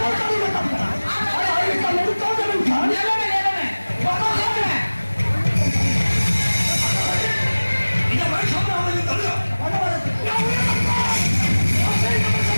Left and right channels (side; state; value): both; inverted; correlation -1.00